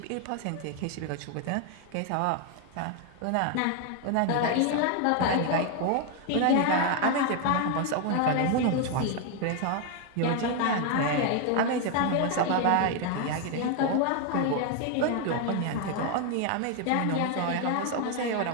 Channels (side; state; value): both; different; correlation 0.01